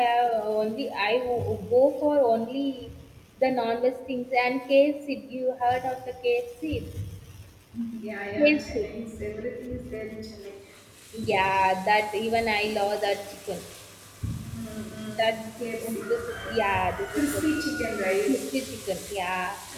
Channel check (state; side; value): identical; both; correlation 1.00